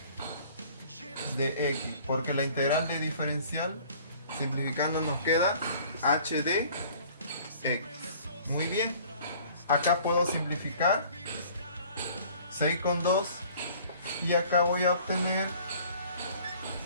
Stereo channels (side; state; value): both; inverted; correlation -0.51